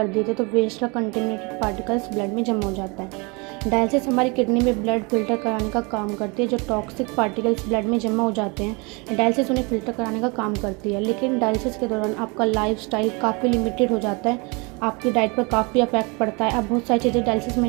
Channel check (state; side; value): quieter; left; 29.5 dB